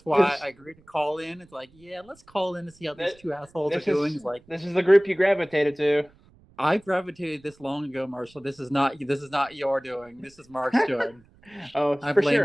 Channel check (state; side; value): noise; right; rumble, 29 dB below the sound